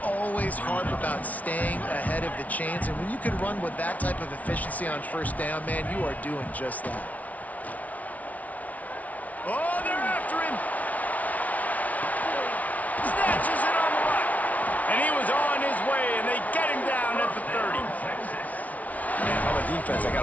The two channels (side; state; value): right; late; 0.071 ms